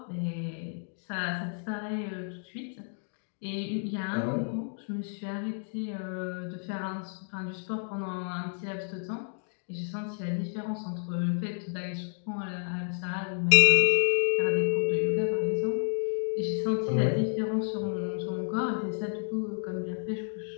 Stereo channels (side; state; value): right; silent; 57 dB below the other